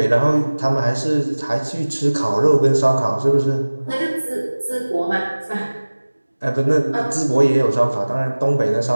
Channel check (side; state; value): both; inverted; correlation -1.00